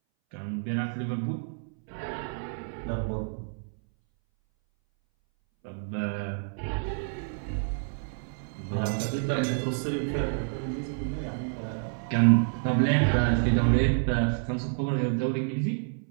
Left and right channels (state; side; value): silent; left; 59 dB below the other